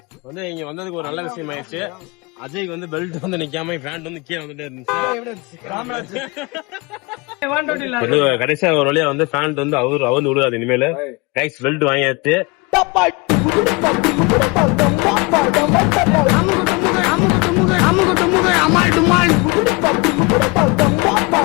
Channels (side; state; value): right; quieter; 26.7 dB